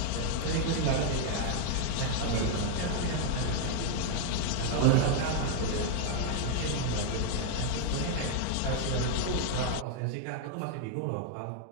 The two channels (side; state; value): both; different; correlation 0.00